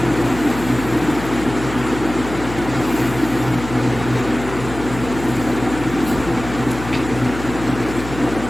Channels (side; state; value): left; noise; hum, 10 dB below the sound